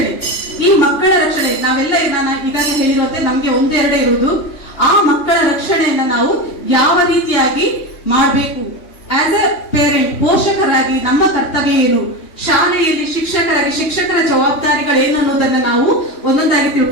ಈ ಮಕ್ಕಳ ರಕ್ಷಣೆ ನಾವೆಲ್ಲ ನಾನು ಈಗಾಗಲೇ ಹೇಳಿರುವಂತೆ ನಮ್ಗೆ ಒಂದೆರಡೇ ಇರುವುದು. ಆ ಮಕ್ಕಳ ರಕ್ಷಣೆಯನ್ನ ನಾವು ಯಾವ ರೀತಿಯಾಗಿ ಮಾಡಬೇಕು, ಆಸ್ ಎ ಪೇರೆಂಟ್ ಪೋಷಕರಾಗಿ ನಮ್ಮ ಕರ್ತವ್ಯ ಏನು, ಶಾಲೆಯಲ್ಲಿ ಶಿಕ್ಷಕರಾಗಿ ಶಿಕ್ಷಕರ ಜವಾಬ್ದಾರಿಗಳೇನು ಅನ್ನೋದನ್ನ ನಾವು ಒಂದೊಂದಾಗಿ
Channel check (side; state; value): right; late; 3.2 ms